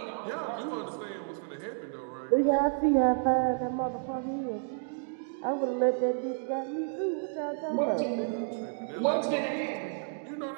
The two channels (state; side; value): silent; left; digital silence